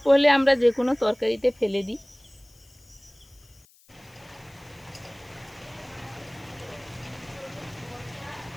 হলে আমরা যে কোনো তরকারিতে ফেলে দিই।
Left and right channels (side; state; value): left; noise; hiss, 28 dB below the sound